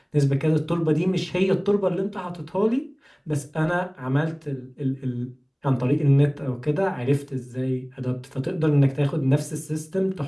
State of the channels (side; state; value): both; identical; correlation 1.00